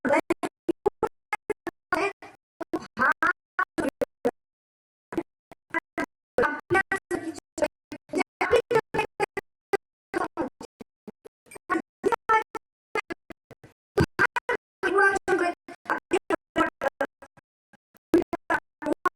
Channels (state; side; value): identical; both; correlation 1.00